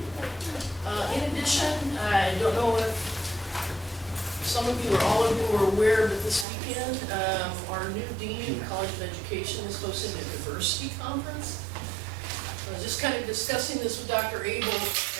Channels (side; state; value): left; drops out; at 6.5 s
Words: In addition, I don't know if some of you or all of you are aware, but this weekend, our new Dean of College of Education is hosting a diversity conference. I was just kind of discussing this with Dr. Abel,